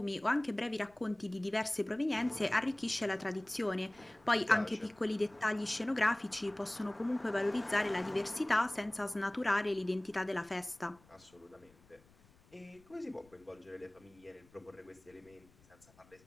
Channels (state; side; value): noise; left; rumble, 29 dB below the sound